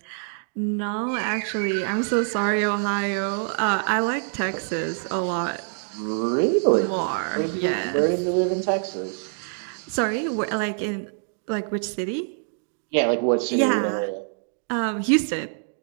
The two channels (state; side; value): silent; left; digital silence